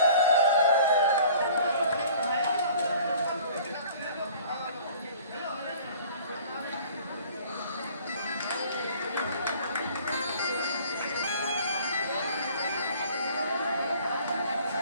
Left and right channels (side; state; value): both; inverted; correlation -0.50